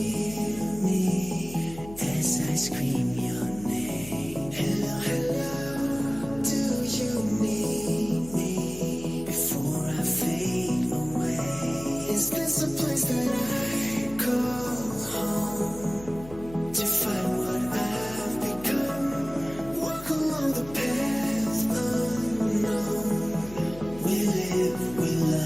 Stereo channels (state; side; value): noise; left; hum, 16 dB below the sound